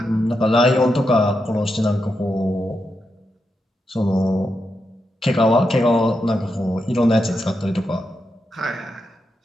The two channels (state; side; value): normal; both; correlation 0.85